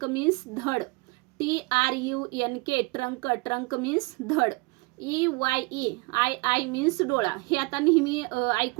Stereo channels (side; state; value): left; quieter; 26.8 dB